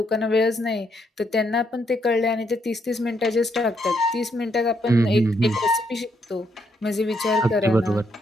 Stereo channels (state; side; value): normal; both; correlation 0.75